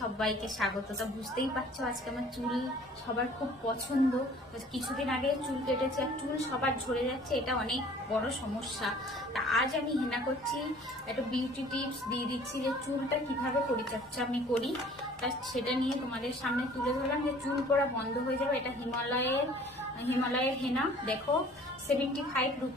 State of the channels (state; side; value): normal; both; correlation 0.51